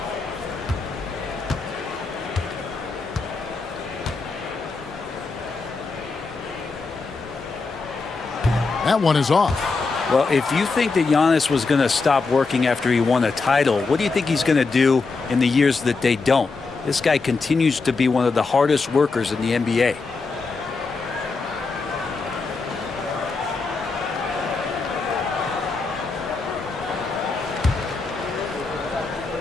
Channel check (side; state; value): right; quieter; 4.2 dB